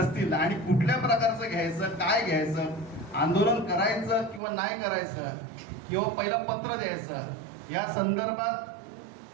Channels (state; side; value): drops out; left; at 4.4 s